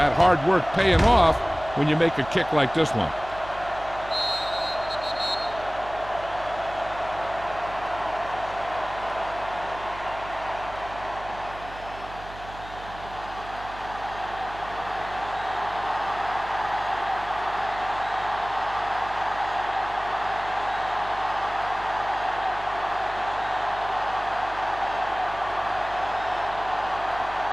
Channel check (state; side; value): noise; right; hum, 15 dB below the sound